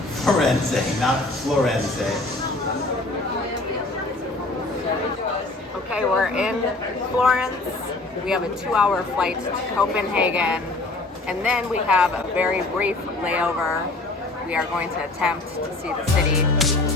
not Florenze. Okay, we're in Florence. We have a 2-hour flight to Copenhagen, and then we have a very brief layover. We are going to attempt to see the city.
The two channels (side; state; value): right; quieter; 3.0 dB